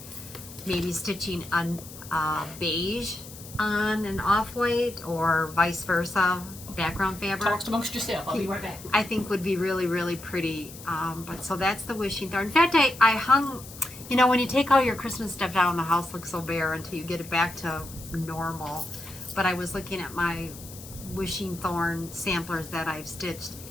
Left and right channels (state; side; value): noise; left; hiss, 16 dB below the sound